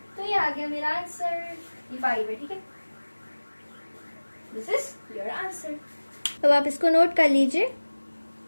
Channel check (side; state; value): both; inverted; correlation -1.00